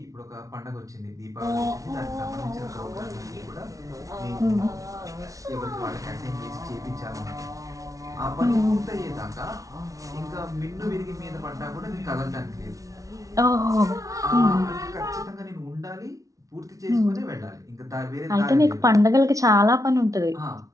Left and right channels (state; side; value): late; left; 0.17 ms